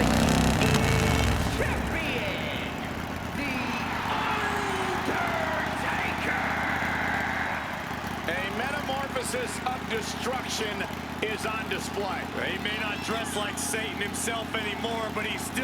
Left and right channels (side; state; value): both; identical; correlation 1.00